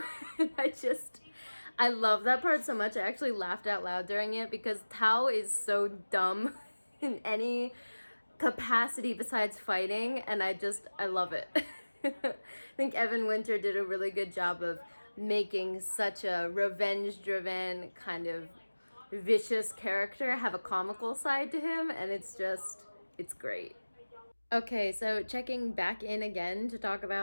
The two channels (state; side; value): inverted; both; correlation -1.00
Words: And I love that part so much. I actually laughed out loud during it because Tao is so dumb in any capacity besides fighting. And I love it. I think Evan Winter did a really good job of making such a revenge-driven kind of vicious character have a comical side to him. And it's great. Okay, so checking back in again to talk